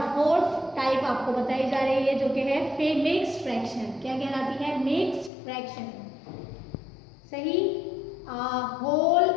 फोर्थ टाइप आपको बताई जा रही है जो कि है मिक्स्ड फ्रैक्शन। क्या कहलाती है? Mixed fraction. सही, whole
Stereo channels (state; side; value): drops out; right; at 5.3 s